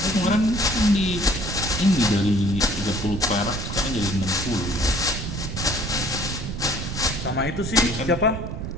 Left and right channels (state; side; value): noise; right; rumble, 6 dB below the sound